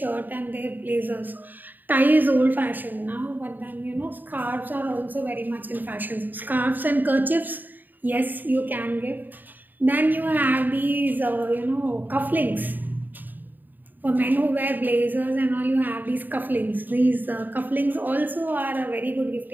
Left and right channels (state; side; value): late; left; 0.089 ms